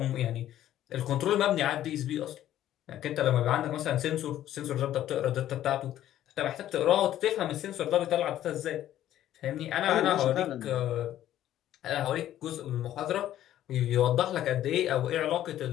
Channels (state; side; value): quieter; right; 12.5 dB